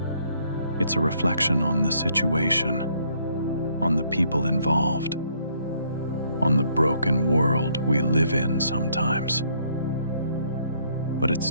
It's a reflection on the situation, on the people involved, on the broken world we live in sometimes. But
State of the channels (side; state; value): both; inverted; correlation -0.68